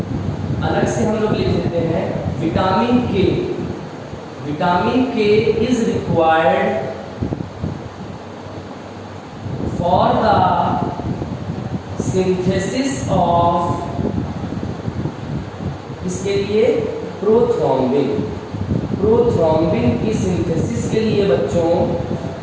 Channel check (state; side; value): identical; both; correlation 1.00